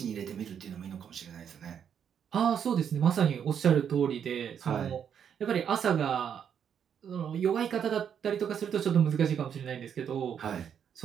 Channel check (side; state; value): left; quieter; 8.2 dB